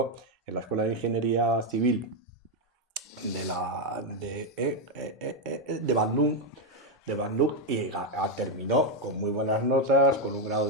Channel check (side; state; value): both; normal; correlation 0.03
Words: en la Escuela de Ingeniería Civil de Bandung, y terminó con muy buenas notas, con un grado